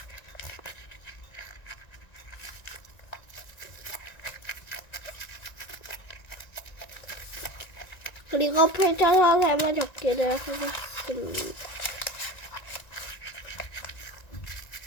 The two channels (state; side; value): late; right; 1.9 ms